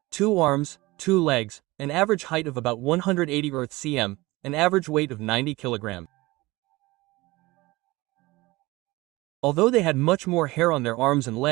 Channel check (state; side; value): quieter; left; 20.9 dB